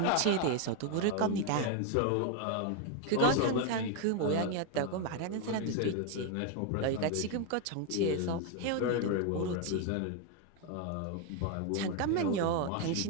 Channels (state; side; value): different; both; correlation 0.01